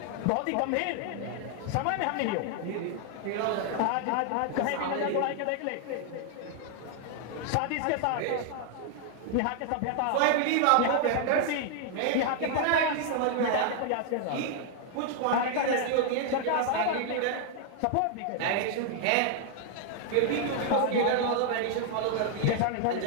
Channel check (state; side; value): different; both; correlation 0.00